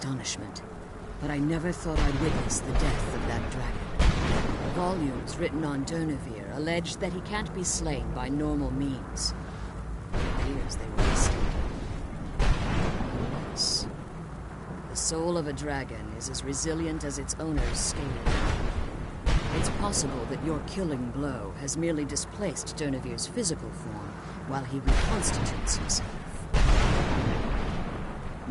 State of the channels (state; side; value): identical; both; correlation 1.00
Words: but I never thought I'd witness the death of that dragon. Volumes written on Durnevere allege that he can't be slain by normal means. It appears they were mistaken. Yes. The soul of a dragon is as resilient as its owner's scaly. It's possible that your killing blow has merely displaced Durnevere's physical form while he reconstitutes himself.